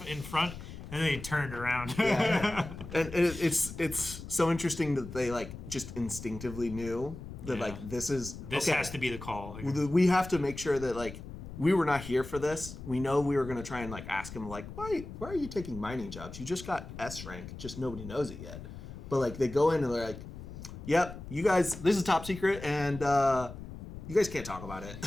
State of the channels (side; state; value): left; noise; rumble, 12 dB below the sound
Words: in front and then he turned around. Yeah. And it's so interesting that they, like, just instinctively knew that, like, this has to be the call. We have to make sure that, like, we were not here for this. We know we were going to try and, like, ask him, like, why are you taking mining jobs? You just got S rank. Just nobody knows it yet. But, like, they go in and they're like, yep, you guys, this is top secret, and you guys can't talk about it.